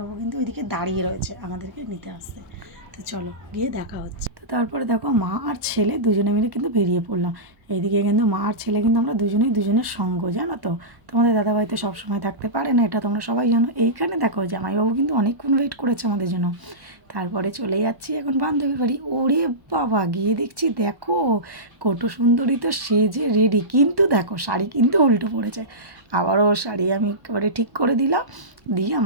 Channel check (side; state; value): left; late; 1.2 ms